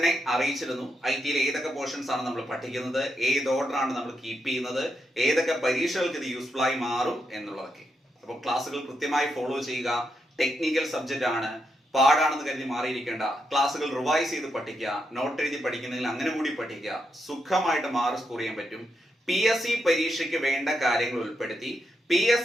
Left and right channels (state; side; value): normal; both; correlation 0.83